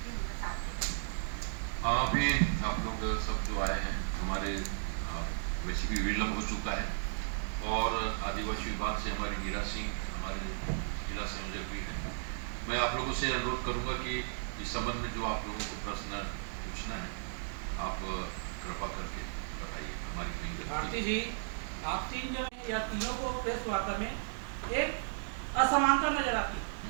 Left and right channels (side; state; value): left; silent; digital silence